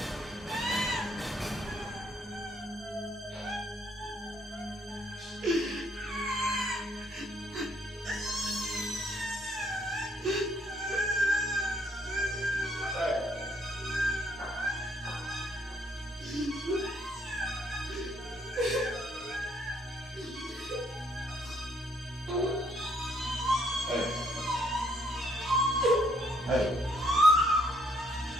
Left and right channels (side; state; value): both; normal; correlation 0.69